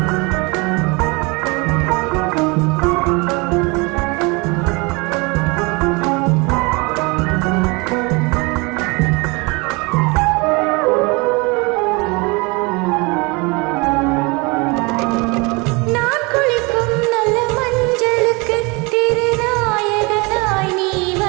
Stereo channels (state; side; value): quieter; left; 27.6 dB